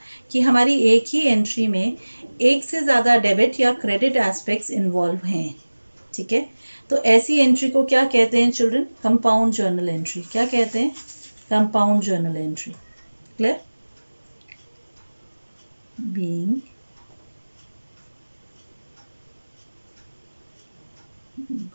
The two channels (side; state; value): both; inverted; correlation -1.00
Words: कि हमारी एक ही एंट्री में एक से ज़्यादा डेबिट या क्रेडिट एस्पेक्ट्स इन्वॉल्व हैं, ठीक है, तो ऐसी एंट्री को क्या कहते हैं चिल्ड्रन, कंपाउंड जर्नल एंट्री। क्या कहते हैं, compound journal entry. Clear, being